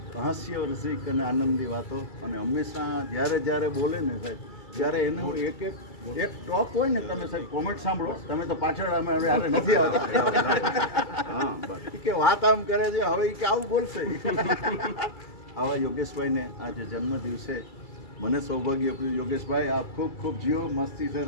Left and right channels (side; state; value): right; late; 2.3 ms